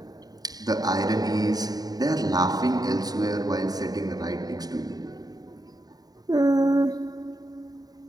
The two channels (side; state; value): left; late; 0.18 ms